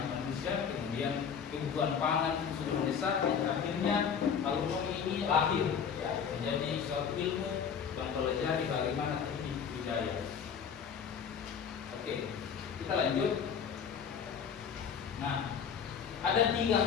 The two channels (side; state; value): right; quieter; 7.2 dB